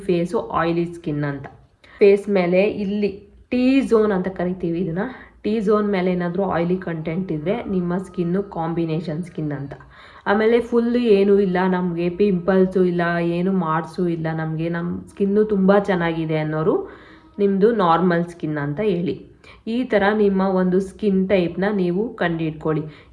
ಫೇಸು ಆಯಿಲಿ ಸ್ಕಿನ್ ಅಂತ. ಫೇಸ್ ಮೇಲೆ ಇಲ್ಲಿ ಟಿ ಝೋನ್ ಅಂತ ಕರಿತೀವಿ ಇದನ್ನು, ಟಿ ಝೋನ್ ಮೇಲೆ ಏನಾದರೂ ಆಯಿಲಿ ಕಂಟೆಂಟ್ ಇದ್ದರೆ ನಿಮ್ಮ ಸ್ಕಿನ್ನು ಕಾಂಬಿನೇಷನ್ ಸ್ಕಿನ್ ಅಂತ. ಆಮೇಲೆ ಫುಲ್ಲು ಏನೂ ಇಲ್ಲ, ನಮಗೆ ಪಿಂಪಲ್ಸು ಇಲ್ಲ, ಏನು ಮಾರ್ಕ್ಸು ಇಲ್ಲ, ನಮಗೆ ನಮ್ಮ ಸ್ಕಿನ್ನು ತುಂಬ ಚೆನ್ನಾಗಿದೆ ಅನ್ನೋರು ನಿಮ್ಮದು ನಾರ್ಮಲ್ ಸ್ಕಿನ್ ಅಂತ ಹೇಳಿ. ಈ ಥರ ನಿಮ್ಮ ಒಂದು ಸ್ಕಿನ್ ಟೈಪ್ನ ನೀವು ಕಂಡುಹಿಡ್ಕೊಳ್ಳಿ.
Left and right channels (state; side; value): identical; both; correlation 1.00